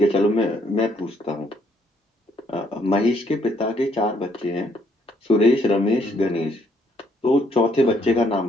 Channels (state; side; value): normal; both; correlation 0.69